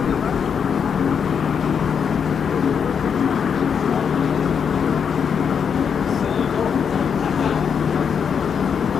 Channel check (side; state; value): right; quieter; 7.0 dB